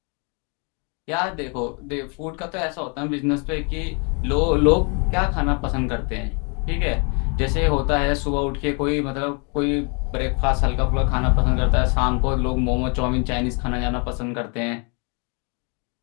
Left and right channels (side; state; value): right; quieter; 35.1 dB